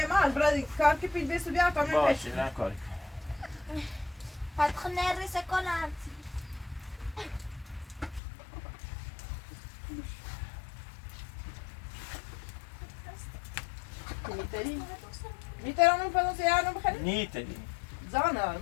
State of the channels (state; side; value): drops out; right; at 8.2 s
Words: man, brad, kar که پیش بیست بیا تا من باشه نه کاری فتح نرسه کنم میترانم فلان سیارم بخریم؟ نیتری زانه